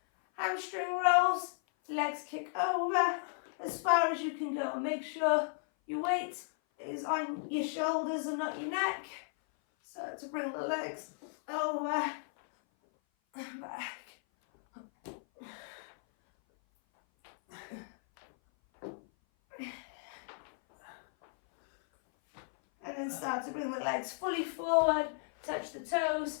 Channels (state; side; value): silent; right; 54 dB below the other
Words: Hamstring rolls, legs kick over as far as you can go. Make sure your weight is on your shoulders and not your neck. Start to bring the legs over and back. And then start to bring the legs fully forward, touch the toes,